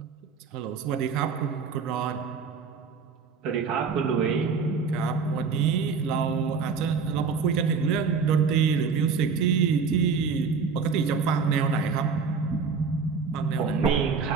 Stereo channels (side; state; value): left; quieter; 5.4 dB